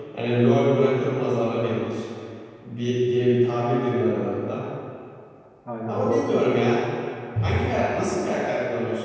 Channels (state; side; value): identical; both; correlation 1.00